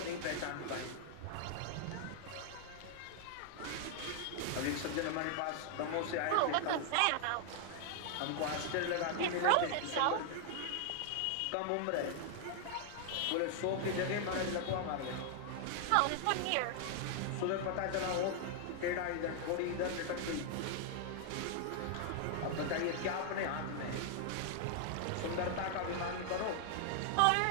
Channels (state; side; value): different; both; correlation 0.00